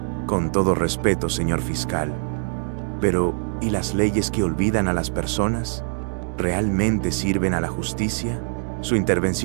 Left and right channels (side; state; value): left; silent; digital silence